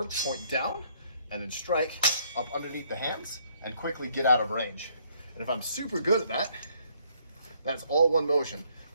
point down, and then strike up underneath the hands and quickly get out of range. And if I'm super good at that, that's all one motion.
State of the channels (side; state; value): both; inverted; correlation -0.67